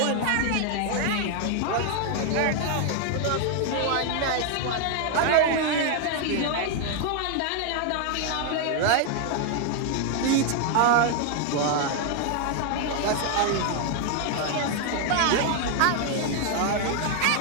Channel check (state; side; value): different; both; correlation 0.00